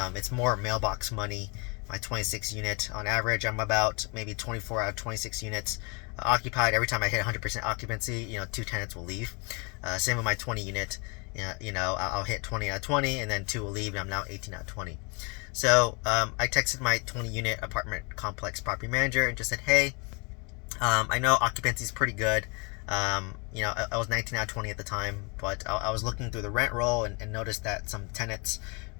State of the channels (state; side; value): quieter; right; 31.8 dB